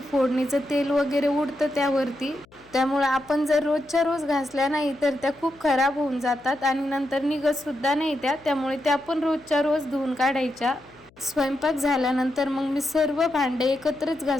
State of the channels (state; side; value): noise; left; hum, 29 dB below the sound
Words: फोडणीचं तेल वगैरे उडतं त्यावरती। त्यामुळे आपण जर रोजच्या रोज घासल्या नाही तर त्या खूप खराब होऊन जातात आणि नंतर निघत सुद्धा नाही त्यामुळे त्या पण रोजच्या रोज धुवून काढायच्या। स्वयंपाक झाल्यानंतर मग मी सर्व भांडे एकत्रच